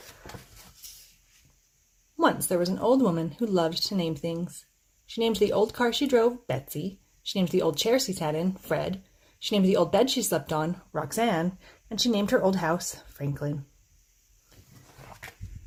Once there was an old woman who loved to name things. She named the old car she drove, Betsy. She named the old chair she sat in, Fred. She named the old bed she slept on, Roxanne. And she named her old house, Franklin.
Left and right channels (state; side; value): identical; both; correlation 1.00